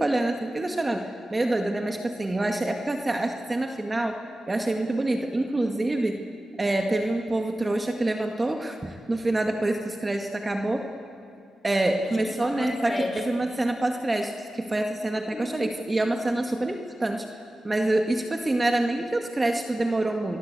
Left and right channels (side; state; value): both; normal; correlation 0.96